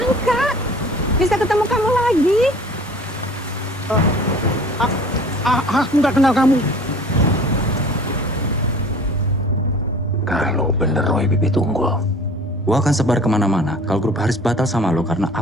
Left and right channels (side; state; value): both; normal; correlation 0.46